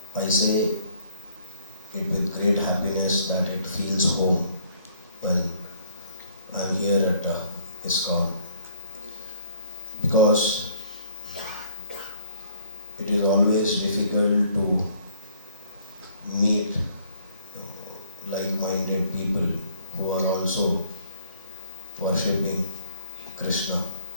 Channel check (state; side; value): inverted; both; correlation -0.60